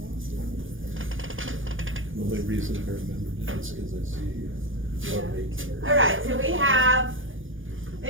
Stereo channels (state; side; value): late; left; 0.58 ms